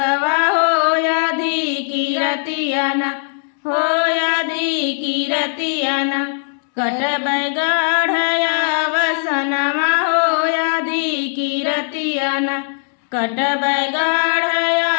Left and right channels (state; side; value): silent; right; 59 dB below the other